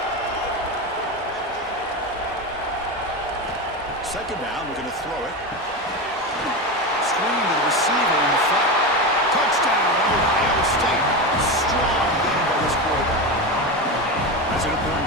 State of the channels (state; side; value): normal; both; correlation 0.19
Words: Second down, we're going to throw it. Screen to the receiver in the front. Touchdown, Ohio State. Strong game by this quarterback. That's an